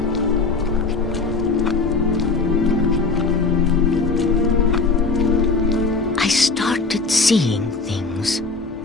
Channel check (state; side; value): quieter; right; 3.9 dB